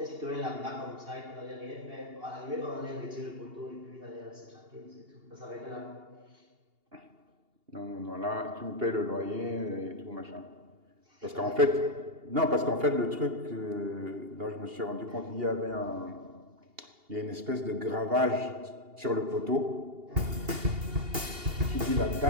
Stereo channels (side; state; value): left; late; 2.8 ms